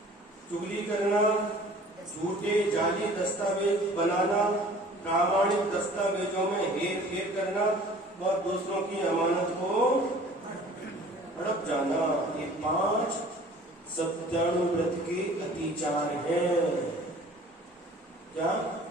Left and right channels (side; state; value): both; normal; correlation 0.49